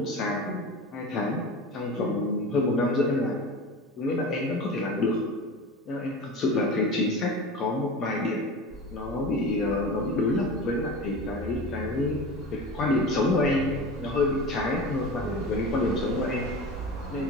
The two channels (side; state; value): both; normal; correlation 0.31